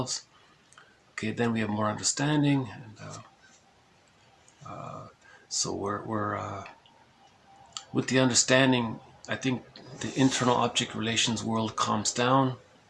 Okay, then we have more understanding, and so we're with the understanding, I think the internal object relations world calms down,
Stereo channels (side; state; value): both; identical; correlation 1.00